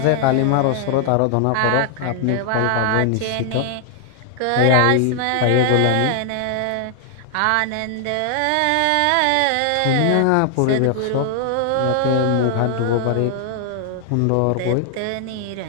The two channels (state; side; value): different; both; correlation 0.00